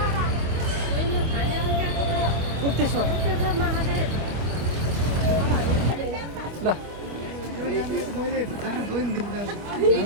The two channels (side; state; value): left; late; 25 ms